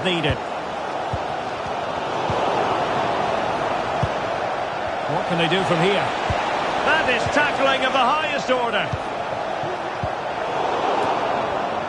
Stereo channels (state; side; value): identical; both; correlation 1.00